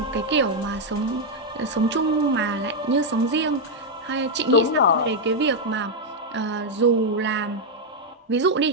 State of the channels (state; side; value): normal; both; correlation 0.00